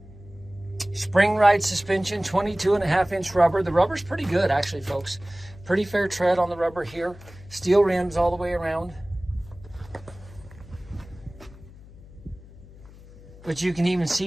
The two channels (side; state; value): left; noise; hum, 20 dB below the sound